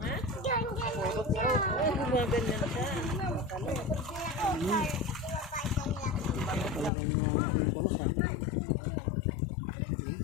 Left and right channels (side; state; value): right; drops out; at 6.9 s